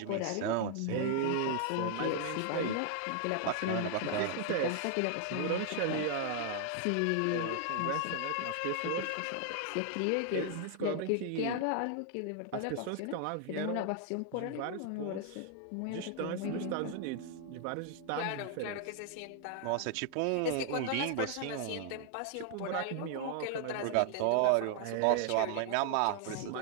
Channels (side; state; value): both; different; correlation 0.00